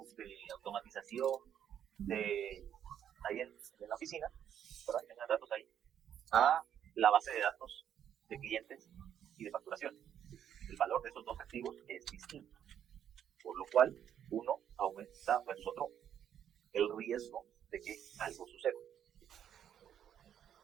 de automatización ahí en la oficina, ¿verdad? Que tengan datos ahí, a la base de datos de clientes y de facturación. El valor de esos dos activos es distinto, por lo cual uno aumenta versus otro el riesgo de que algo suceda.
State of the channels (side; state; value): left; quieter; 9.6 dB